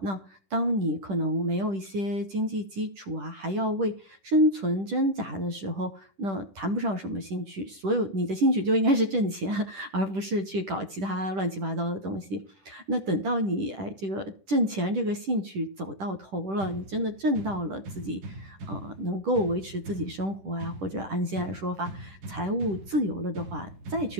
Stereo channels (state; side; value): late; left; 10 ms